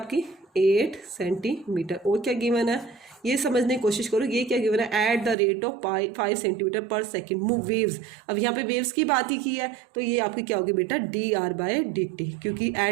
8 सेंटीमीटर। और क्या गिवन है ये समझने की कोशिश करो, ये क्या गिवन है at the rate of 5 centimetre per second move waves. अब यहाँ पे वेव्स की बात ही की है तो ये आपकी क्या होगी बेटा dr बाई डी टी, क्योंकि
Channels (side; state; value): left; drops out; at 5.4 s